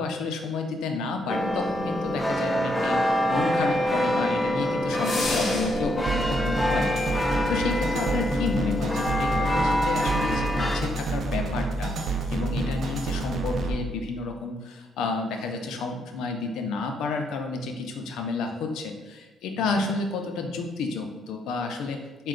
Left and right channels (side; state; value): both; normal; correlation 0.76